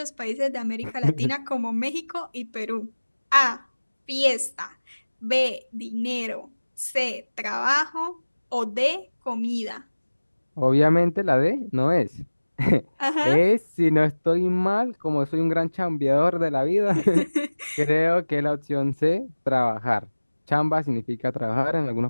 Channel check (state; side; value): inverted; both; correlation -1.00